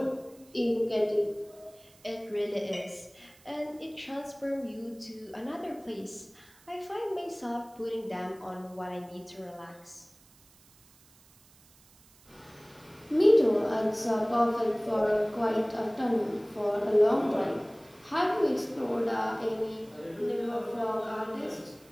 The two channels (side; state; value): right; noise; hiss, 27 dB below the sound